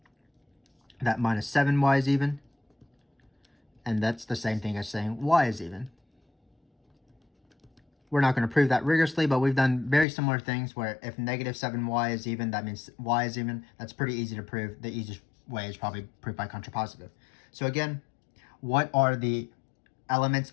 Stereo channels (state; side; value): drops out; right; at 10.1 s